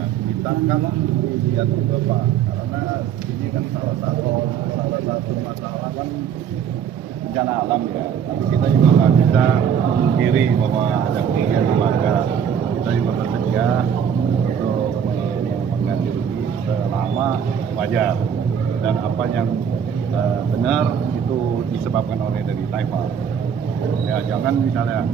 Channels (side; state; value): left; quieter; 8.0 dB